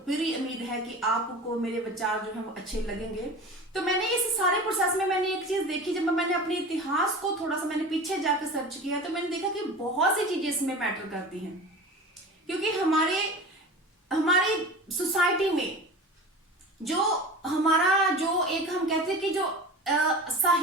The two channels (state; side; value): normal; both; correlation 0.34